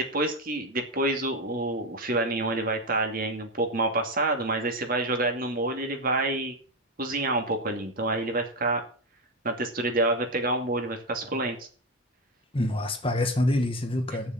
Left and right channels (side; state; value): both; normal; correlation 0.14